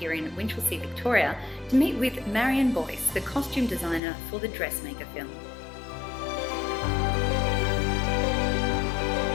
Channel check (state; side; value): drops out; right; at 4.0 s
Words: in Winchelsea, Victoria, to meet with Marion Boyce, the costume designer for the Dressmaker film.